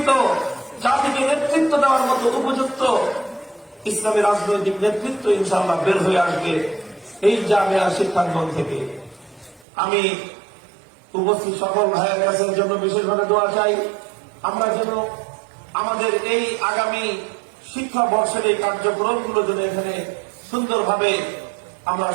জাতিকে নেতৃত্ব দেওয়ার মতো উপযুক্ত ইসলামী রাজনৈতিক নেতৃত্ব ইনশাআল্লাহ বের হয়ে আসবে এই জামিয়া শিক্ষাঙ্গন থেকে। আমি উপস্থিত সকল ভাইয়ের কাছের জন্য বিশেষভাবে দোয়া চাই, আমরা যেন আমাদের এই আগামী শিক্ষা বর্ষের এই কার্যক্রমগুলো যেন এখানে সুন্দরভাবে আমরা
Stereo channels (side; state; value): left; drops out; at 9.7 s